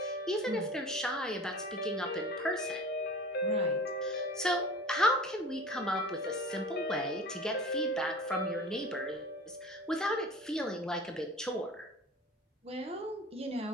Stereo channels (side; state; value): both; normal; correlation 0.39